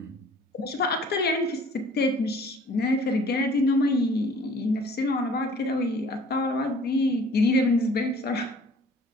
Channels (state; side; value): normal; both; correlation 0.53